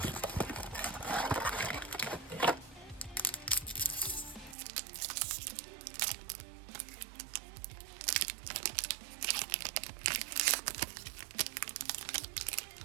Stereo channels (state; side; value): drops out; left; at 4.5 s